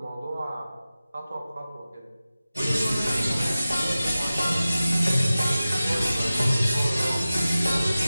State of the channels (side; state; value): both; inverted; correlation -0.95